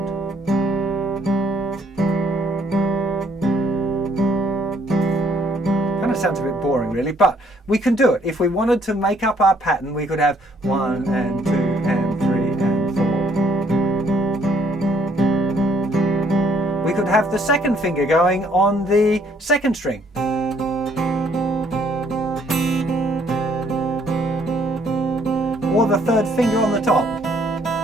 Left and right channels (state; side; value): normal; both; correlation 0.65